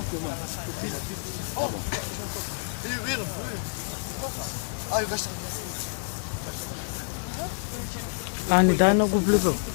Ни дай много влива.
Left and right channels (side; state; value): right; silent; 59 dB below the other